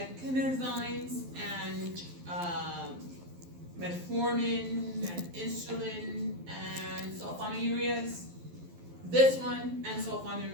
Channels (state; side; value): late; left; 12 ms